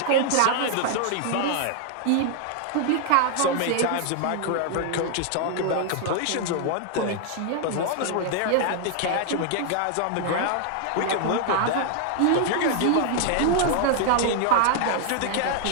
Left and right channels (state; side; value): different; both; correlation 0.00